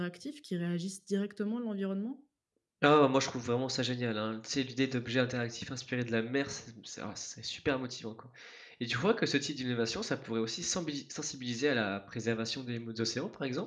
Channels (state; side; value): identical; both; correlation 1.00